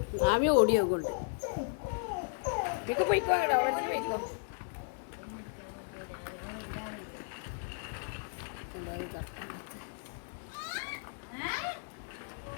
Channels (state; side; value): silent; right; 55 dB below the other